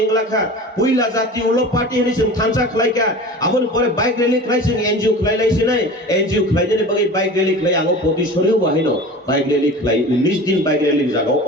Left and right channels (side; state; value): both; normal; correlation 0.36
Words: इंगलाखा पुइला जाति उलो पार्टी हनि जों थानचा खालायका आबोन परे बाइक रैली खालाय जों एनजिओ खालायलायसै नाय एनजिओ खालायनानै बागै बाइक रैली खालाय आंगो पतिसरियो बाहायनो बाइक रैली खालाय 19 दिन बाइक रैली जागाव